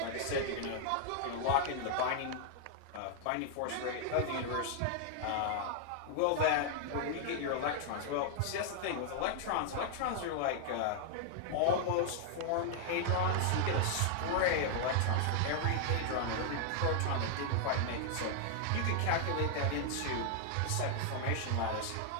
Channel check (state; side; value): different; both; correlation 0.00